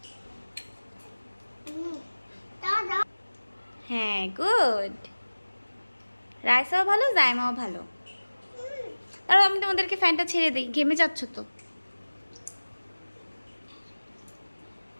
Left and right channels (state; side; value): inverted; both; correlation -1.00